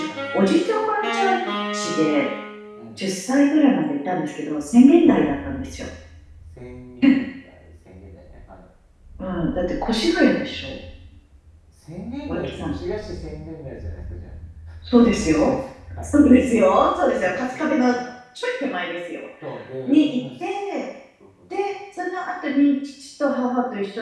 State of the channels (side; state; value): both; identical; correlation 1.00